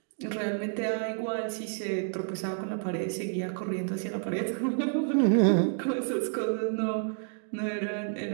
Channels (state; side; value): silent; left; digital silence